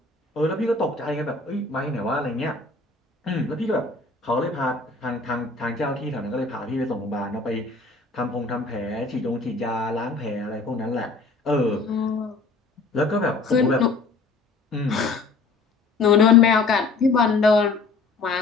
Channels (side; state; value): right; quieter; 3.9 dB